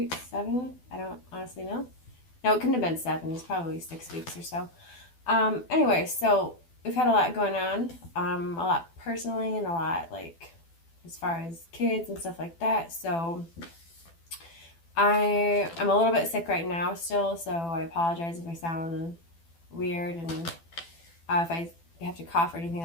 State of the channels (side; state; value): right; late; 12 ms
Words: 7. I don't honestly know. No, it couldn't have been 7. It's probably 6 weeks or so. Anyway, so we've had a lot going on, a lot personally and a lot like as far as kids and stuff like that. So I'm a little bit sick right now still, so I apologize if I sound weird and if I have to cough or anything